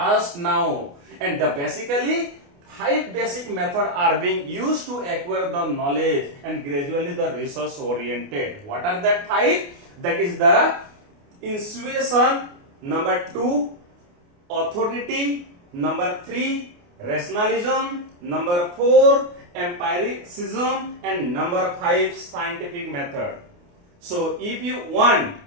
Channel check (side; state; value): left; late; 28 ms